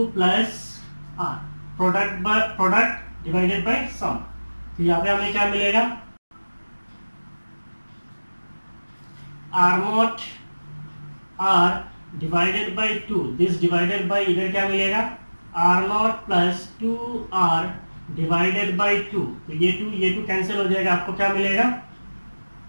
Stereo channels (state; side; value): inverted; both; correlation -1.00